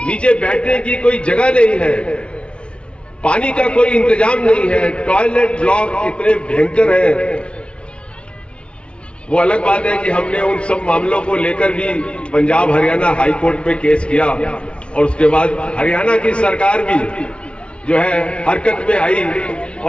नीचे बैठने की कोई जगह नहीं है, पानी का कोई इंतजाम नहीं है, टॉयलेट ब्लॉक इतने भयंकर हैं। वो अलग बात है कि हमने उन सब मामलों को लेकर भी पंजाब हरियाणा हाई कोर्ट में केस किया और उसके बाद हरियाणा की सरकार भी जो है हरकत में आई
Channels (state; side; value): late; right; 0.058 ms